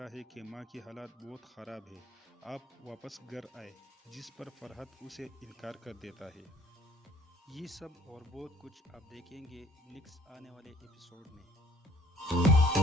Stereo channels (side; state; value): both; normal; correlation 0.56